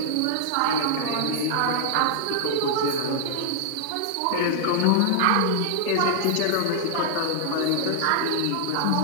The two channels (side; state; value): both; different; correlation -0.01